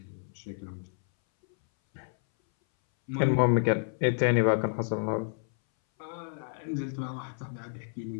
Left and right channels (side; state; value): right; silent; 58 dB below the other